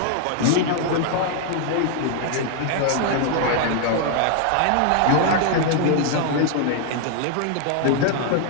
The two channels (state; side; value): different; both; correlation 0.00